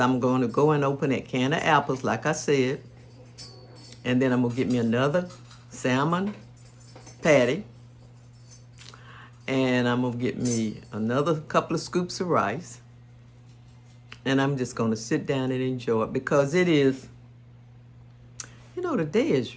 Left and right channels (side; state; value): both; identical; correlation 1.00